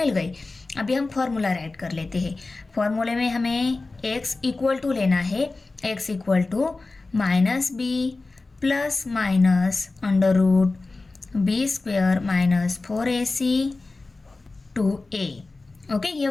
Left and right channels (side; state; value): right; quieter; 3.5 dB